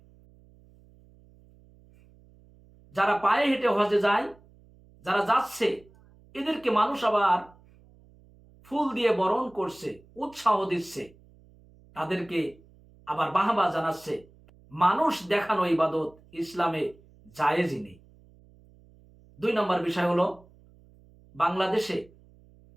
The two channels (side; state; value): right; noise; hum, 27 dB below the sound